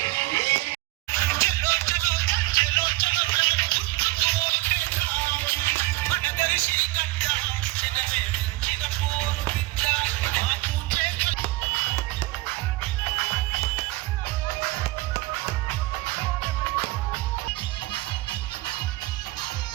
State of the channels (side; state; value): left; quieter; 20.4 dB